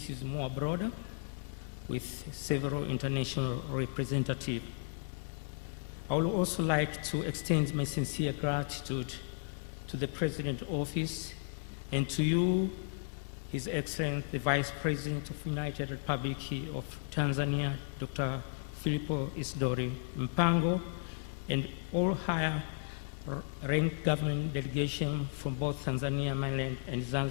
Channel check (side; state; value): right; silent; 55 dB below the other